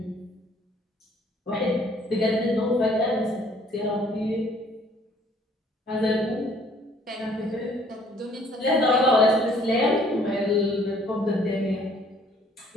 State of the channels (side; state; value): both; normal; correlation 0.60